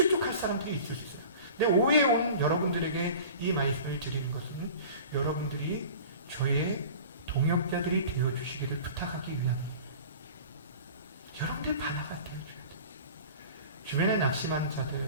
사람들이 있을 수 있어요. 근데 오후에 온 여러분들에게 이 말씀을 드리는 것은 여러분들이 저의 동역자들이 되어주시기를 부탁하기 위함입니다. 여러분들이 바나가 되어줘야 돼요. 주변에 낙심한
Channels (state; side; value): inverted; both; correlation -0.41